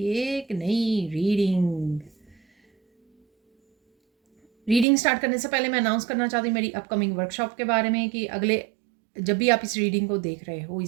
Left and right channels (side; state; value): left; drops out; at 4.9 s